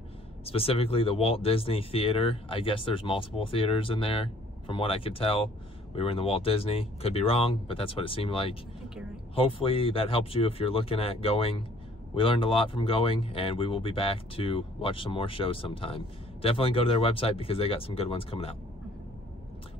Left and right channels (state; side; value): normal; both; correlation 0.58